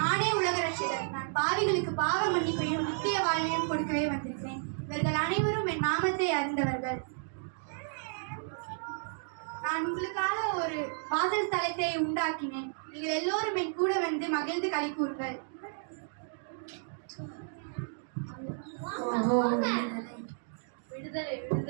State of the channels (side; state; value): left; silent; digital silence